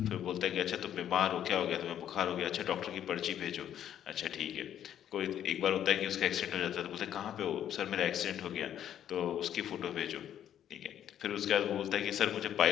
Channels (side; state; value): right; quieter; 10.4 dB